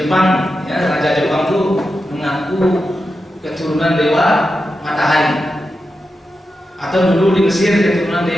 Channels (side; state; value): both; normal; correlation 0.89